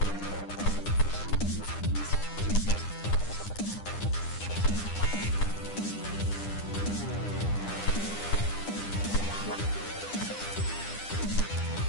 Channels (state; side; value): late; right; 9.9 ms